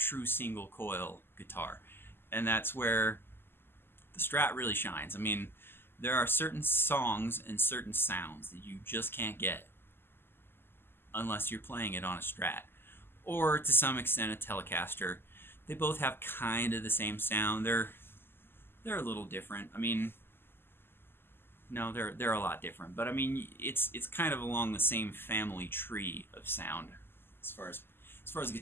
single coil guitar. And that's where the Strat really shines. I mean, there are certain songs and certain sounds that you just can't get unless you're playing it on a Strat, or to some extent a Telecaster. They both have kind of the same sound. They're a little different. I mean, no, they're a lot different. But I mean, it's kind of along the same family tree of sound as far as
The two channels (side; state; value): right; late; 0.11 ms